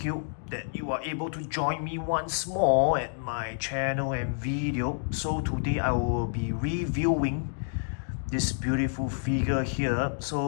you that you are able to join me once more at my channel and video. So today I will be reviewing this beautiful figure here.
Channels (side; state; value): right; silent; digital silence